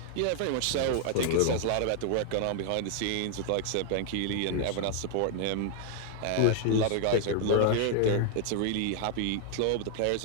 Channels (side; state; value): both; different; correlation 0.00